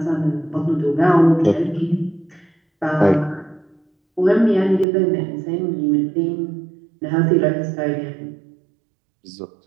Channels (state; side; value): drops out; left; at 4.9 s